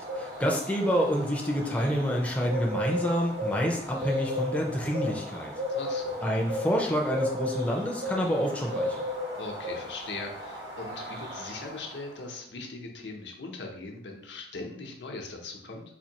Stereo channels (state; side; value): normal; both; correlation 0.64